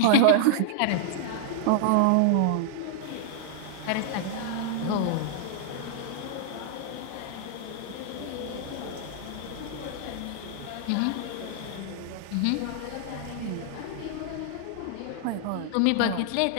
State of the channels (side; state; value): both; different; correlation -0.01